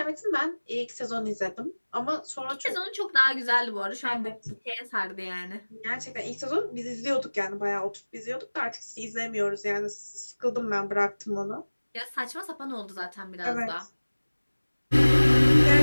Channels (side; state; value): both; inverted; correlation -1.00